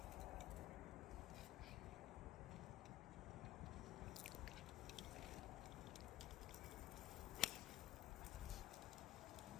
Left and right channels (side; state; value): right; quieter; 14.7 dB